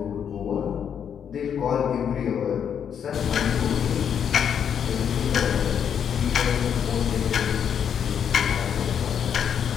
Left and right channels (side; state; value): right; quieter; 8.1 dB